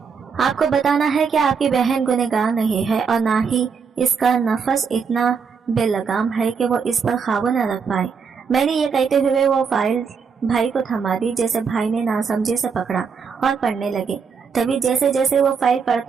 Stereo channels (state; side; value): quieter; left; 5.9 dB